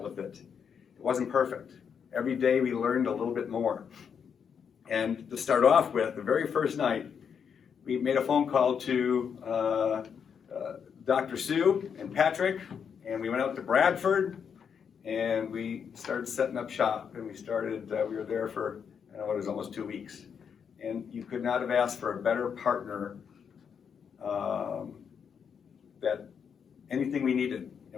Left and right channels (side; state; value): right; quieter; 7.1 dB